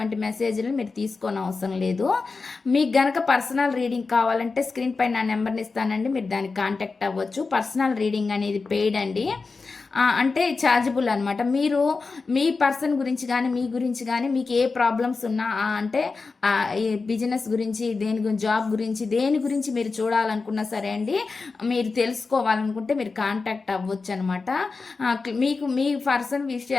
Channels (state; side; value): quieter; right; 4.3 dB